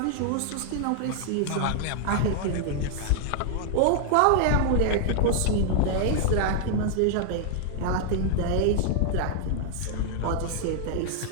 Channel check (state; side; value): different; both; correlation -0.01